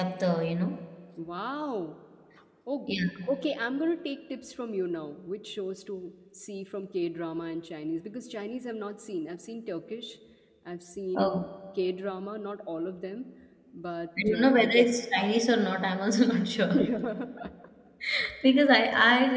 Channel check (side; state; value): both; identical; correlation 1.00